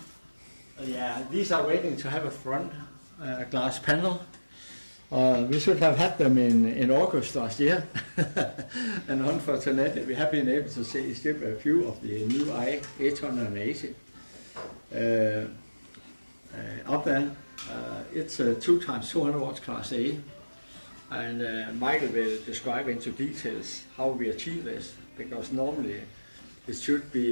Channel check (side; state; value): both; inverted; correlation -1.00